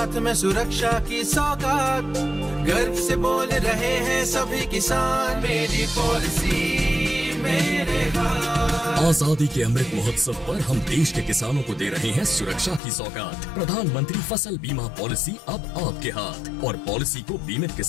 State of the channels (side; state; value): right; drops out; at 12.8 s